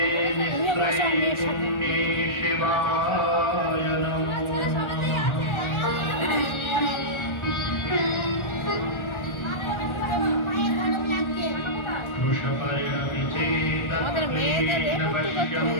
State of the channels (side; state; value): right; late; 1.4 ms